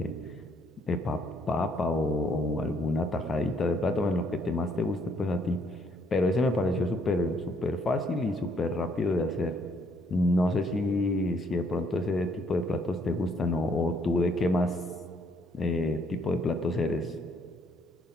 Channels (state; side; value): normal; both; correlation 0.68